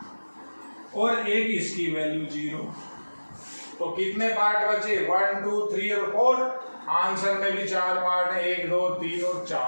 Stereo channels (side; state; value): both; inverted; correlation -1.00